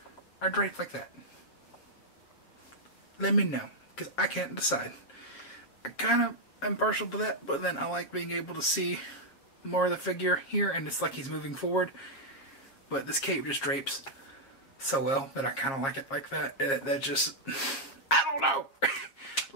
or draped like that? Let me know, because I can't decide. I kind of am partial to that, but then I like being able to see more of the figure here, and it's like he's moving forward. But this cape just drapes so well that I kind of like it like that. That just, I don't know.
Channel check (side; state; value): right; late; 7.3 ms